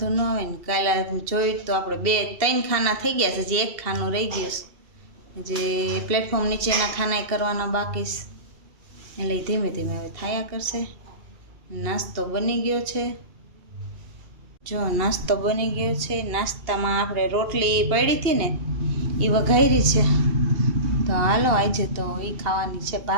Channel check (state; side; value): late; left; 2.7 ms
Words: ન આવે ને। કાલે જોયું તો આપણે 2-3 ખાના થઈ ગયા છે, હજી એક ખાનું રહી ગયું છે, જે પ્લેટફોર્મ નીચેના ખાના કરવાના બાકી છે, એટલે ધીમે ધીમે હવે થયા કરશે। નાસ્તો બની ગયો છે, જો નાસ્તો બની ગયો છે। નાસ્તામાં આપણે રોટલી પડી હતી ને એ વઘારી છે, તો હાલો આજે તો એ ખાવાની છે,